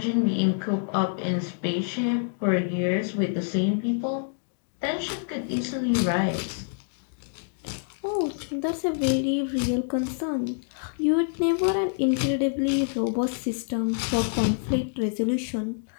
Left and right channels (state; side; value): silent; right; digital silence